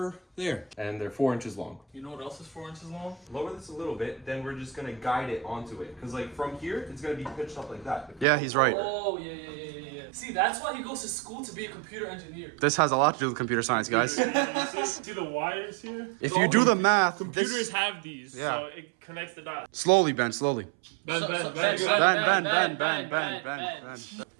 there. And they're 4 inches long. You know what else is 4 inches long? Lower this a little bit, then we're just gonna guide it onto it. Cause like from here, it's gonna be pitched up like that. Yeah, he's right. Oh, yeah. See, that's why he goes to school to be a computer engineer. This has a lot to do with computer science, guys. See the wires here? If you do the math, Computers have these, Yeah. so it connects the dots. slowly, Ben, slowly. Bend. Ben.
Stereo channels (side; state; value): left; drops out; at 8.2 s